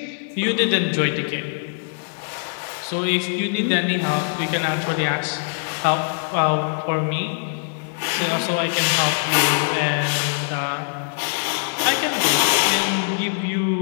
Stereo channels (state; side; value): silent; right; digital silence